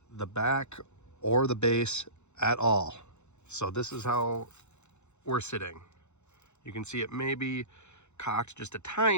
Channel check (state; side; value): late; right; 0.82 ms